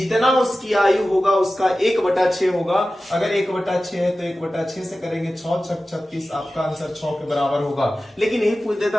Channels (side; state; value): both; normal; correlation 0.95